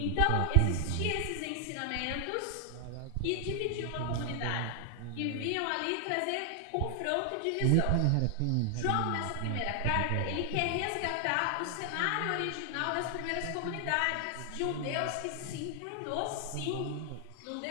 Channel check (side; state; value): both; different; correlation 0.00